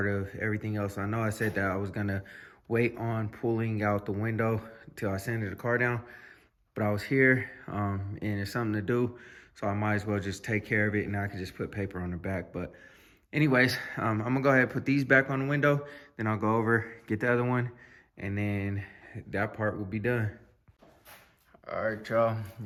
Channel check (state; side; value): identical; both; correlation 1.00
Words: of everything else. I know I said that I was gonna wait on pulling out the window till I sanded the car down, but I was here and it's something to do, so I might as well just take care of it, and I can just put paper on the back. But anyways, I'm gonna go ahead and put these back on the window, then I'll go over, get the other one, and then that part will be done. All right,